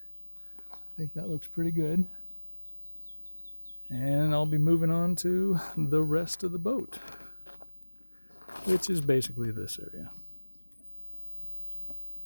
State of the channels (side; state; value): both; inverted; correlation -1.00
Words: I think that looks pretty good. And I'll be moving on to the rest of the boat, which is basically this area.